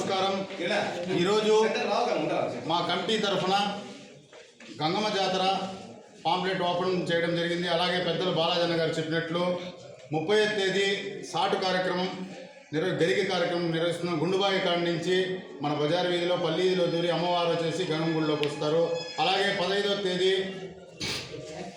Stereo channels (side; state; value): both; identical; correlation 1.00